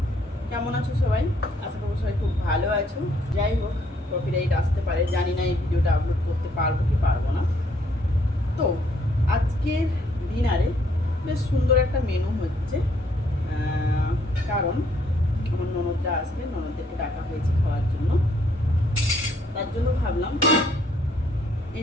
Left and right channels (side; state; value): both; normal; correlation 0.68